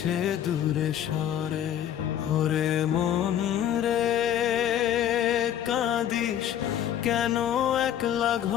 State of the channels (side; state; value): right; quieter; 10.4 dB